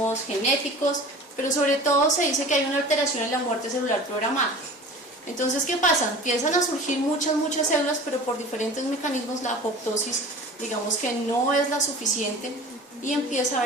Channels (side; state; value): both; normal; correlation 0.40